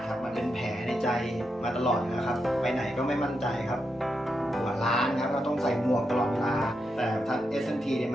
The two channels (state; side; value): normal; both; correlation 0.85